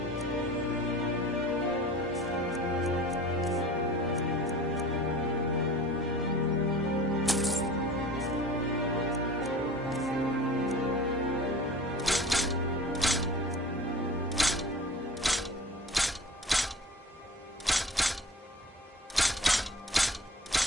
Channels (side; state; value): both; normal; correlation 0.40